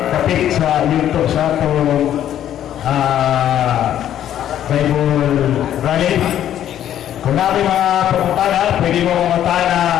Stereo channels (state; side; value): quieter; right; 11.0 dB